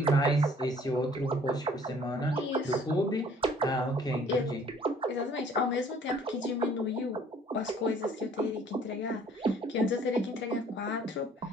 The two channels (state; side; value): normal; both; correlation 0.56